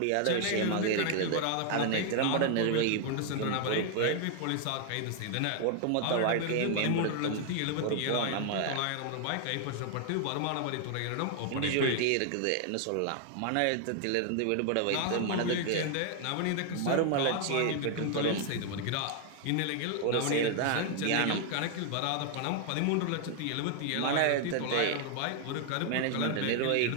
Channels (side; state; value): both; different; correlation 0.00